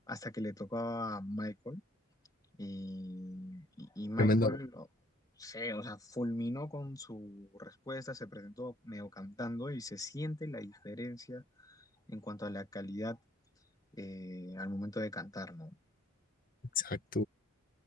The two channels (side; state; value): both; normal; correlation 0.65